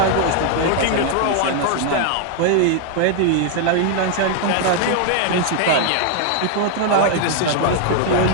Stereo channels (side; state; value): both; different; correlation 0.00